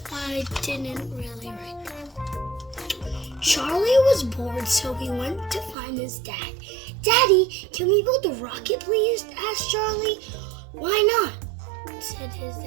I didn't really write that. Charlie was bored, so he went to find his dad. "Daddy, can we build a rocket, please?" asked Charlie. "Why not?" said his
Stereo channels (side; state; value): left; drops out; at 5.8 s